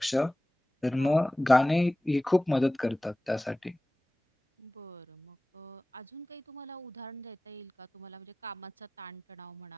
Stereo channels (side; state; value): both; normal; correlation 0.97